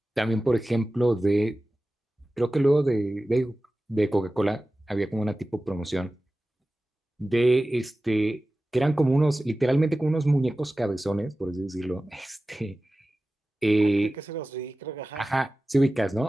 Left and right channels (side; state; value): both; normal; correlation 0.96